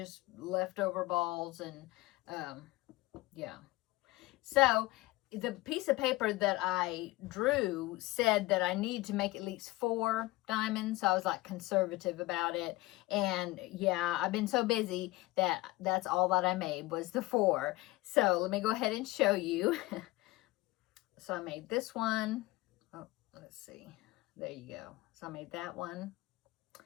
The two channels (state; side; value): quieter; right; 19.7 dB